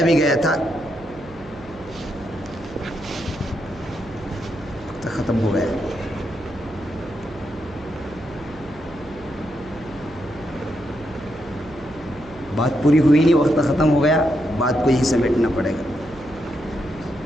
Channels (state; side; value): noise; right; hum, 20 dB below the sound